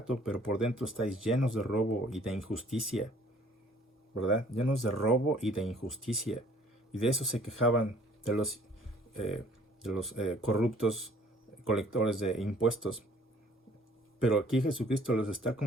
pero por dentro estáis llenos de robo y de injusticia. ¿Verdad? Llenos de robo y de injusticia. Y de eso se quejaban de los corruptos colectores de impuestos. Pero aquí Jesucristo los está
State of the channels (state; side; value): normal; both; correlation 0.57